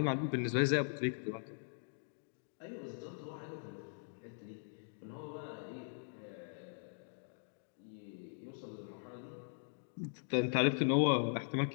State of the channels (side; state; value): right; silent; digital silence